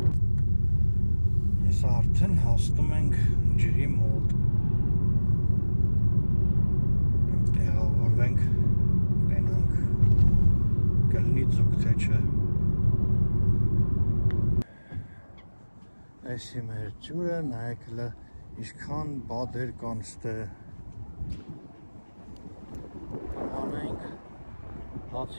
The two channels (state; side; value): inverted; both; correlation -1.00